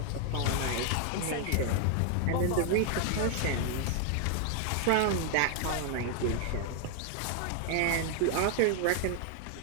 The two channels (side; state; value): both; different; correlation 0.00